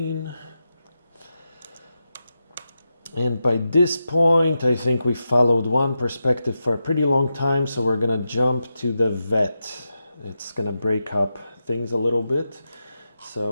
And by this point, I think we followed one perspective for a pretty long time, so we're gonna jump to the vet. It's gonna break up things a little bit.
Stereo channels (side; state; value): both; inverted; correlation -0.88